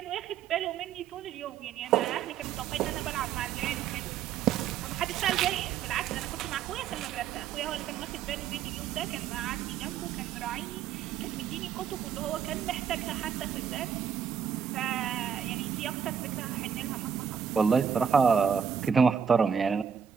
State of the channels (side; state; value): left; quieter; 7.7 dB